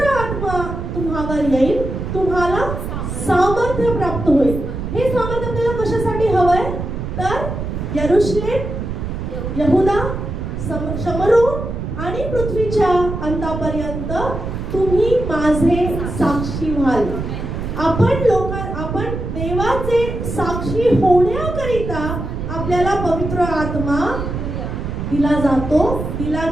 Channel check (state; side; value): noise; right; rumble, 5 dB below the sound